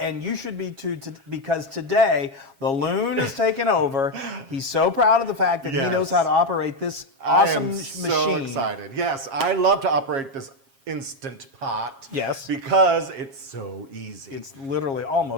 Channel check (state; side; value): late; left; 7.4 ms